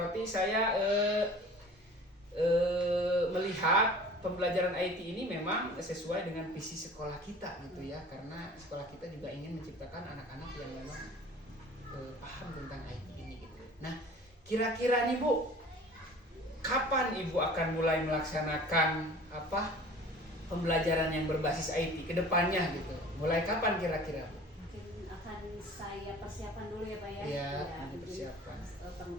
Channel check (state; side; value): normal; both; correlation 0.44